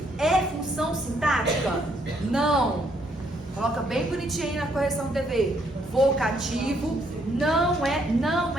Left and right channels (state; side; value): normal; both; correlation 0.71